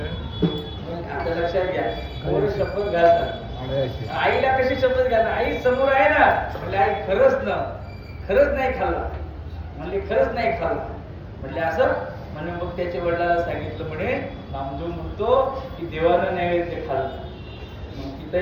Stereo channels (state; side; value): identical; both; correlation 1.00